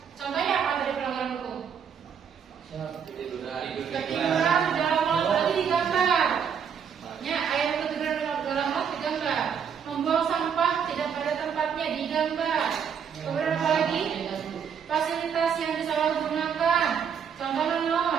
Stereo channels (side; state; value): left; quieter; 7.4 dB